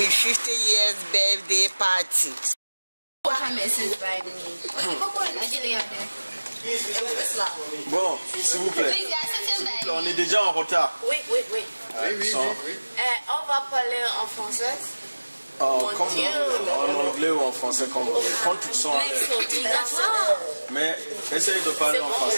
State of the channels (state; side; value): inverted; both; correlation -1.00